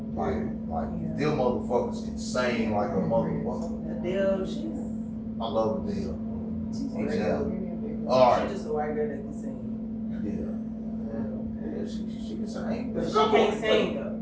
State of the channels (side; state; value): both; identical; correlation 1.00